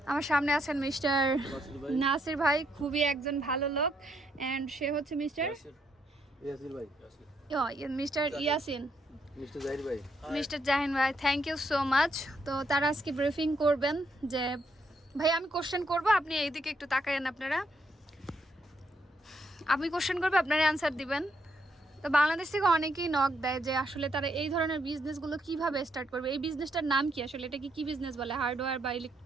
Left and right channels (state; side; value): normal; both; correlation 0.76